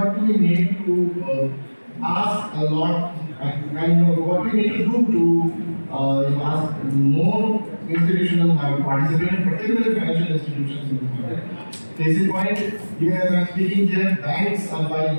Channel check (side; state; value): both; inverted; correlation -1.00